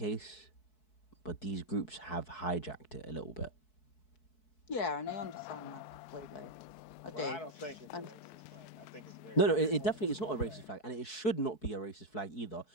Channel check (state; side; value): late; right; 4.6 ms